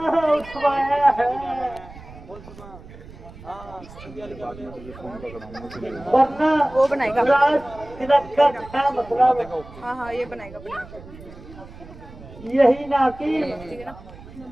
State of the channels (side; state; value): right; noise; rumble, 17 dB below the sound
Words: उठवाया है, वरना वो बनाएगा। राज तिलक का क्या मतलब? हाँ हाँ ये बनाएगा यही ना कि